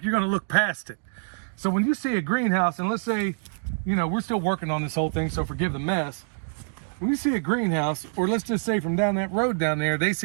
you're going to look past it. So when you see a greenhouse, and let's say, you know, we're still working on this whole thing, so forgive the mess. When you see a greenhouse, or let's just say from down that road down there, they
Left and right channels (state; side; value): silent; left; digital silence